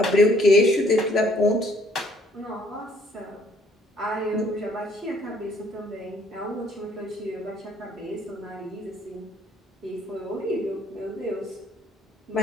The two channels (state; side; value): normal; both; correlation 0.63